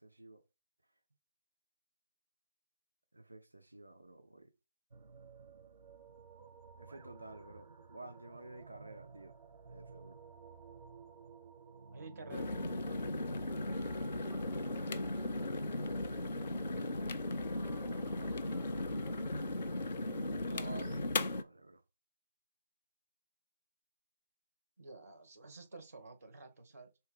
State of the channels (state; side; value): inverted; both; correlation -0.79